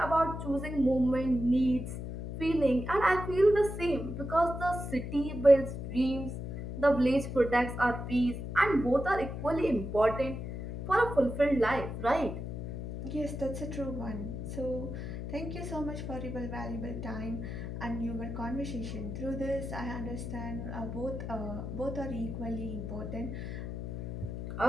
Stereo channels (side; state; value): left; noise; hum, 6 dB below the sound